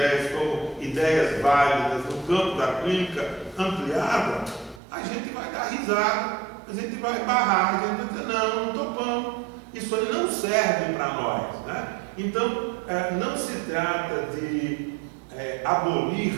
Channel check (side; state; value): left; drops out; at 4.8 s